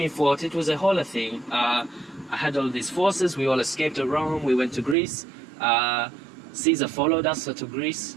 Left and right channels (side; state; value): left; drops out; at 5.0 s